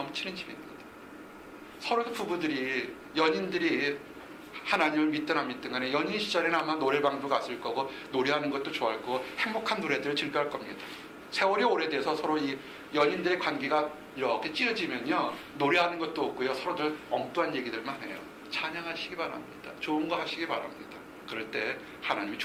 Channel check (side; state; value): both; identical; correlation 1.00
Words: 집입니다. 서로 부부들이 연인들이 하나님을 믿든 안 믿든 간에 연인 시절에는 아마 노래방도 갔을 거고 노래하는 것도 좋아할 거고 행복한 노래들을 즐겨할 겁니다. 세월이 오래돼서 서로 이 연인들의 관계가 이렇게 찌어지면요 노래하는 것도 없고요 서로들 엉뚱한 얘기들만 해요. 찬양하시기 바랍니다. 좋은 거 하시기 바랍니다. 그럴 때 하나님이